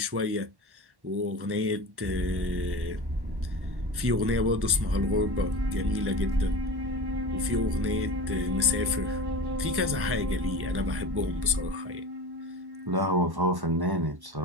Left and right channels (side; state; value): left; late; 1.1 ms